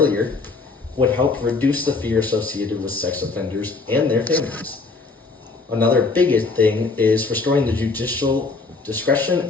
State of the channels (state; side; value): quieter; right; 4.0 dB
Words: would help reduce the fear associated with sex offenders and their families. Another big thing is restoring the judicial discretion